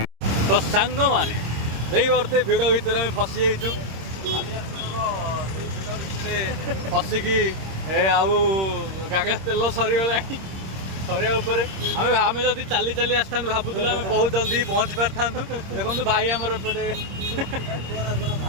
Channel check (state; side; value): late; left; 26 ms